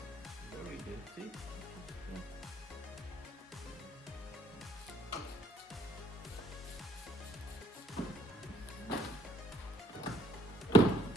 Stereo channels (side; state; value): both; normal; correlation 0.66